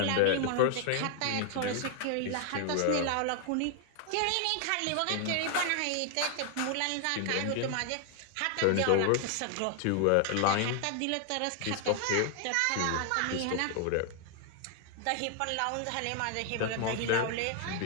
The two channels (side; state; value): both; different; correlation 0.00